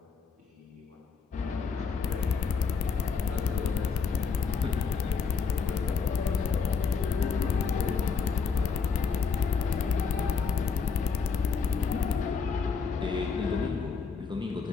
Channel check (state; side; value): quieter; right; 5.5 dB